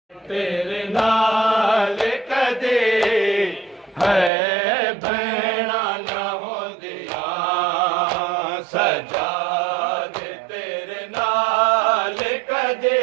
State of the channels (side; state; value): left; drops out; at 4.3 s